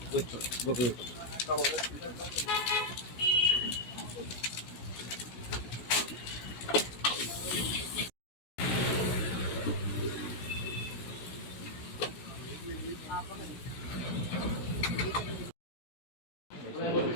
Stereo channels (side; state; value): right; late; 16 ms